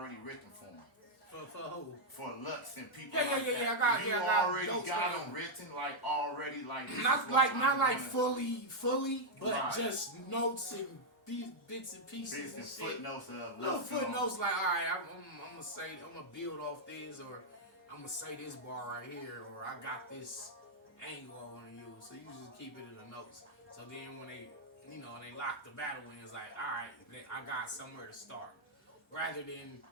written for them. For who? For Lux and people. Yeah. Like I got already jokes got for them written, like already, like not like fully, but right. just notes and bits and pieces Bits and shit. footnotes of Little Lux. footnotes like, all right, I'm gonna build off this, or I'm gonna say this bar right here, or I got this angle I want to use. So you just keep it in the notes. So then when they lock the battle in, it's like, all right, I got somewhere to start, rather than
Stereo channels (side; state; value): both; normal; correlation -0.02